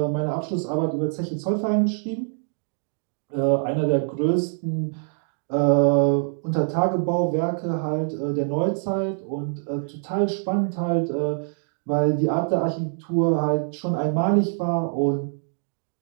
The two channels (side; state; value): left; silent; 62 dB below the other